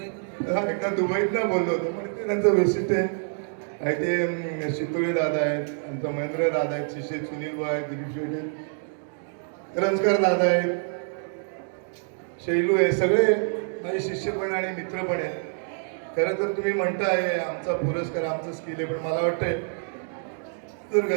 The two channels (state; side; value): silent; left; 61 dB below the other